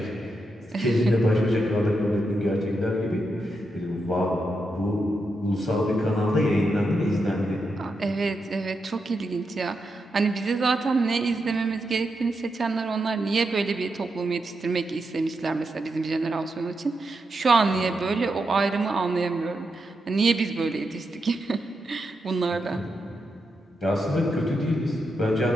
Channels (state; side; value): normal; both; correlation 0.85